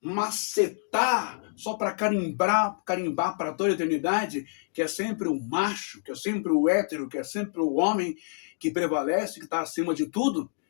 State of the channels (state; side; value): silent; right; digital silence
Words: só para carimbar para toda a eternidade, que é sempre o macho, que é sempre o hétero, que é sempre o homem que prevalece, que está acima de tudo,